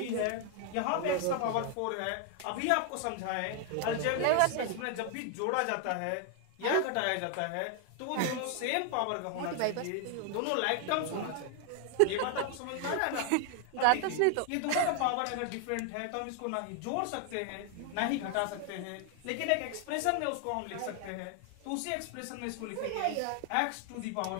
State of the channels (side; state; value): both; different; correlation 0.00